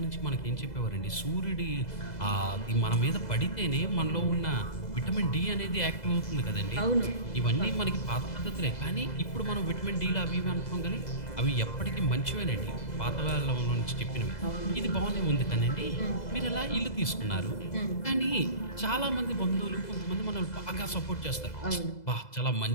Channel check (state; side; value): late; right; 2.0 ms